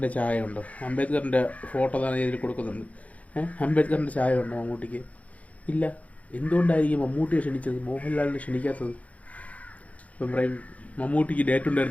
ചായ ഉണ്ടോ? അംബേദ്കറിൻ്റെ ഫോട്ടോ തന്നെ ഇതിൽ കൊടുക്കുന്നുണ്ട്. അംബേദ്കറിൻ്റെ ചായ ഉണ്ടോ മമ്മൂട്ടിക്ക്? ഇല്ല. എന്തുകൊണ്ടായിരിക്കും മമ്മൂട്ടിയെ ക്ഷണിച്ചത്, മോഹൻലാലിനെ ക്ഷണിക്കാത്തത്? ഇപ്പം പറയും മമ്മൂട്ടിക്ക് ഡേറ്റ്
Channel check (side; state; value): right; late; 0.068 ms